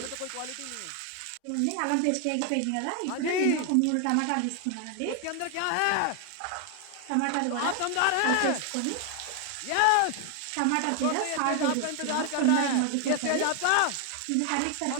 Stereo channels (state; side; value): different; both; correlation 0.00